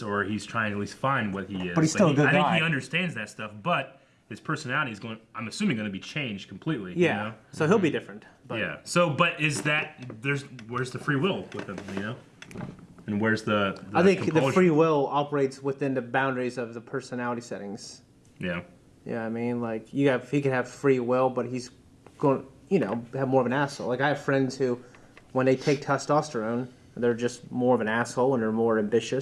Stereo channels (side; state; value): both; identical; correlation 1.00